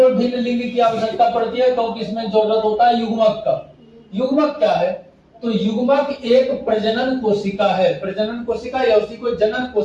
भिन्न लिंग की आवश्यकता पड़ती है? क्योंकि इसमें जरूरत होता है युग्मक का। युग्मक क्या है? तो युग्मक एक प्रजनन कोशिका है। प्रजनन कोशिका या उसी को जनन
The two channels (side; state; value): both; identical; correlation 1.00